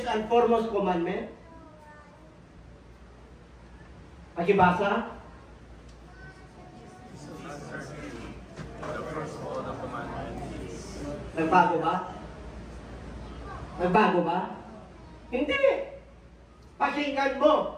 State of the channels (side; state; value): both; identical; correlation 1.00